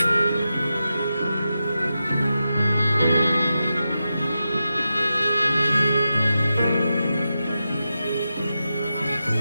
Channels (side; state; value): both; inverted; correlation -0.89